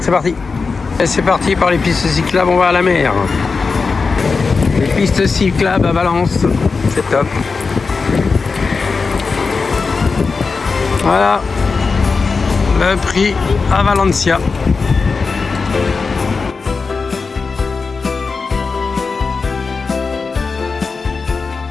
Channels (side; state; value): right; quieter; 4.6 dB